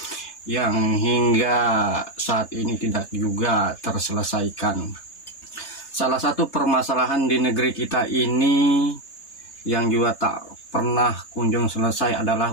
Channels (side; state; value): right; late; 3.3 ms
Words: yang hingga saat ini tidak juga terselesaikan. Salah satu permasalahan di negeri kita ini yang juga tak pernah kunjung selesai adalah